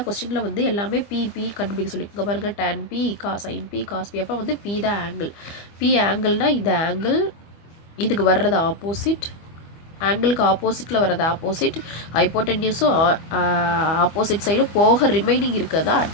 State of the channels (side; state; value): right; late; 25 ms